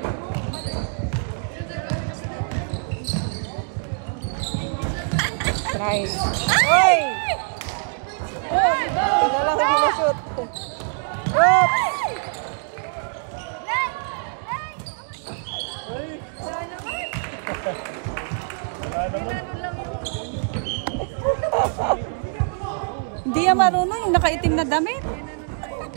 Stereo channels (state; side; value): silent; left; 63 dB below the other